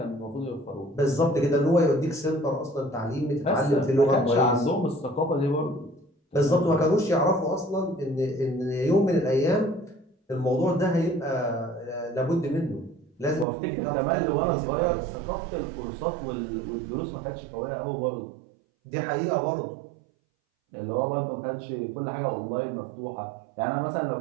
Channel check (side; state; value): left; drops out; at 13.5 s